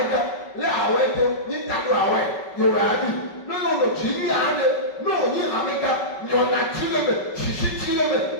lé awɛ to ní ta do awɛ yorùbá bi ní yóò lò tsi ní yàrá de ní òní amega nyɔna tsi lé mɛ sisi tsi lé mɛ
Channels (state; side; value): late; right; 5.3 ms